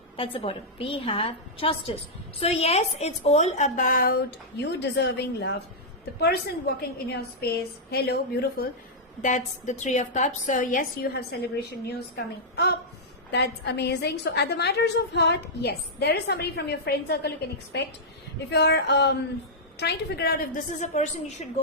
That's the bottom. We have justice. So yes, it's all about you deserving love. The person walking in your space, hello, beautiful. That's the 3 of Cups. So yes, you have celebration news coming up. That's amazing. So at the matters of heart, yes, there is somebody from your friend circle you can expect. If you're trying to figure out if this is a person you should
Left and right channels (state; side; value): normal; both; correlation -0.09